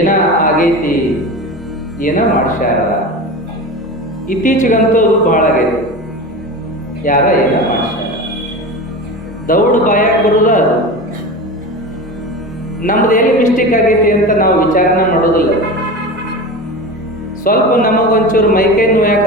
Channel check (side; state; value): both; normal; correlation 0.29